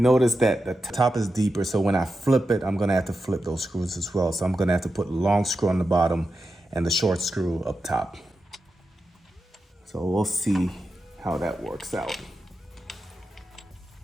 notice that the top is deeper, so when I flip it, I'm gonna have to flip those screws as well. So I'm gonna have to put the long screw on the bottom and the short screw up top. So we'll see how that works out.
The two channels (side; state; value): both; normal; correlation 0.90